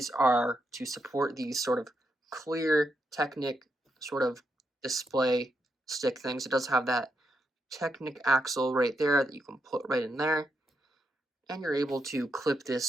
are to support these sort of clear Technic sort of display stick things. It does have that Technic axle right there that you can put right in there, and you're able to clip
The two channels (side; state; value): both; normal; correlation 0.82